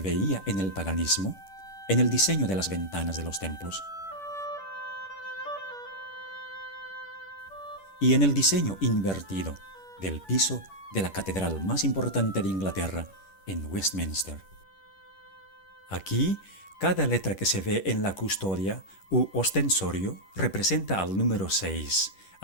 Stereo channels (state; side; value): late; right; 10 ms